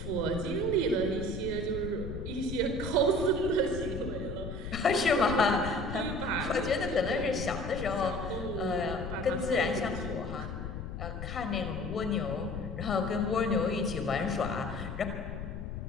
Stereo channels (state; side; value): noise; left; rumble, 7 dB below the sound